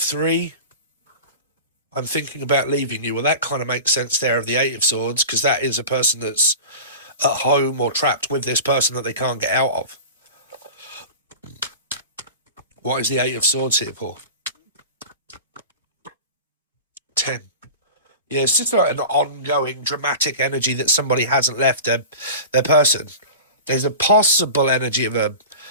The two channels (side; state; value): both; inverted; correlation -0.34